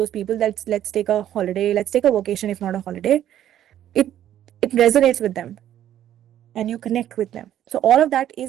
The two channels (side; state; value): left; quieter; 11.5 dB